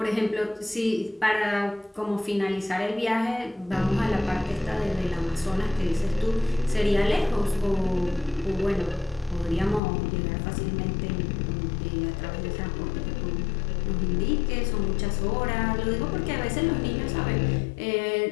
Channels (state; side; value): drops out; right; at 9.8 s